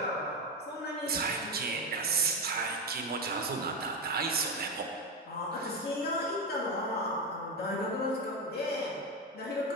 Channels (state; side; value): normal; both; correlation 0.13